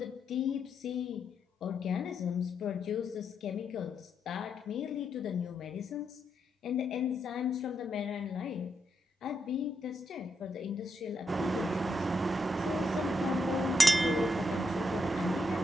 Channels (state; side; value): normal; both; correlation 0.81